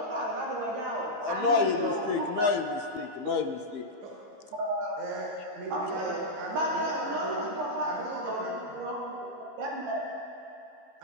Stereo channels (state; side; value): late; left; 15 ms